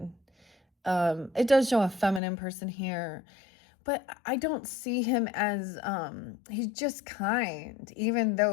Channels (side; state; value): right; drops out; at 2.2 s